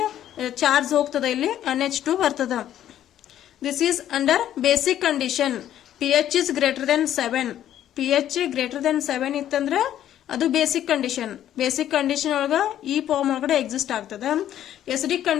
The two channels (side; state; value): right; quieter; 11.4 dB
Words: charge ಹೋಗ್ತದ, ಇಲ್ಲಿ NH2 ಬರ್ತದ. This is under basic condition. pH is greater than 7. pH greater than 7 ಇತ್ತಂದ್ರ ಅದು ಬೇಸಿಕ್ ಕಂಡೀಷನ್. ಬೇಸಿಕ್ ಕಂಡೀಷನ್ ಒಳಗ ಈ ಫಾರ್ಮ್ ಒಳಗಡೆ ಎಕ್ಸಿಸ್ಟ್ ಆಗ್ತದ. ಎಸಿಡಿಕ್